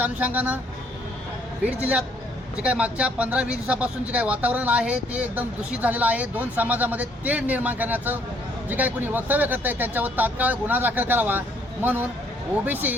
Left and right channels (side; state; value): both; normal; correlation 0.66